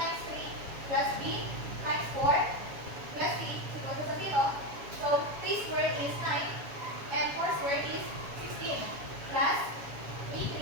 3 plus b times 4 plus c is equal to 0. So, 3 squared is 9 and 4 squared is 16 plus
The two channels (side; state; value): left; late; 7.2 ms